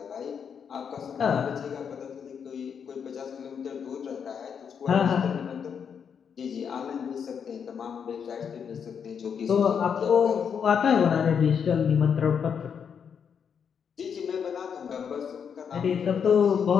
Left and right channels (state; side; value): quieter; right; 7.2 dB